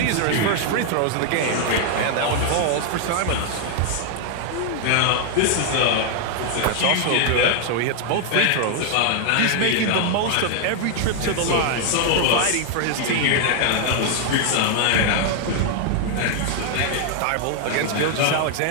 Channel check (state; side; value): different; both; correlation 0.00